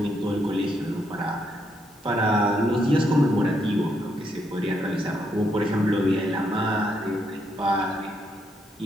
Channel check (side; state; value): both; normal; correlation 0.77